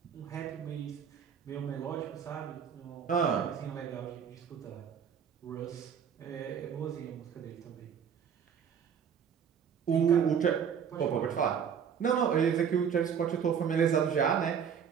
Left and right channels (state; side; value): quieter; left; 7.7 dB